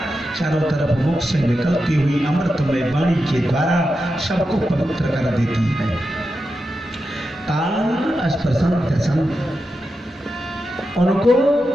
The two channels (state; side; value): normal; both; correlation 0.89